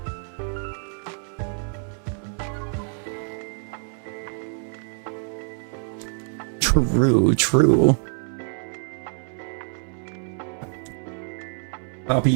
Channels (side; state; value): left; silent; 58 dB below the other